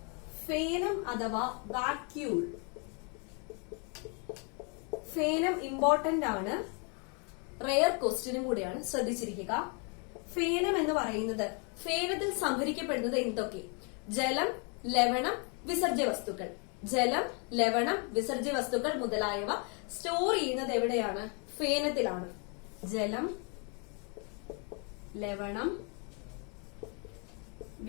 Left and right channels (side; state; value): right; quieter; 36.4 dB